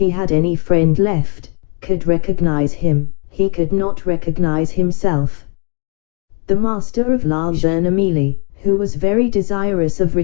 had any friend left, could recognize him. He could not recognize himself. The master of La Jeune Amélie, who was very desirous of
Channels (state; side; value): quieter; right; 37.0 dB